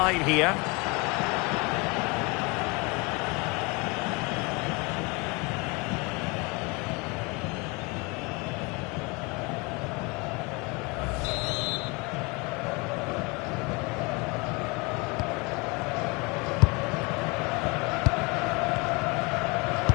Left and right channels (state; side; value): quieter; right; 27.4 dB